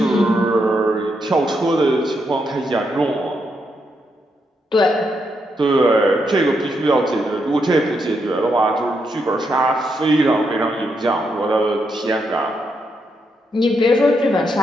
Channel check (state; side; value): normal; both; correlation 0.80